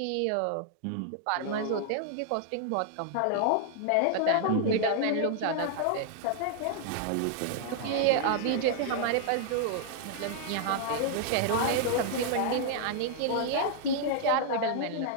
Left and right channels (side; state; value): both; different; correlation -0.01